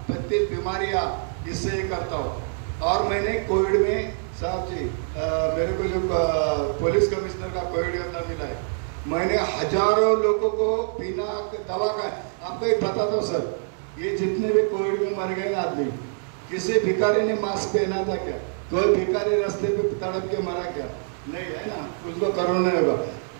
बीमारियाँ इससे करता हूँ। और मैंने कोविड में, साहब जी मेरे को जो पुलिस कमिश्नर का कोविड का मिला है, मैंने हजारों लोगों को बिना दवा का, आपको एक बताता हूँ सर, ये जितने भी कोविड में मर गए ना आदमी, किसी भिखारी ने मास्क पहना था क्या? कोई भिखारी रास्ते पे तड़प के मरा क्या? नहीं, है ना, उसको कोरोना नहीं होगा।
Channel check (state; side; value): silent; left; digital silence